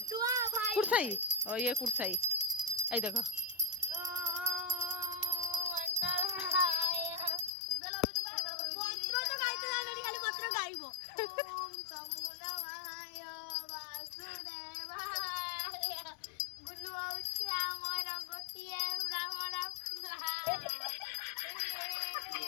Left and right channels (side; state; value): right; drops out; at 7.5 s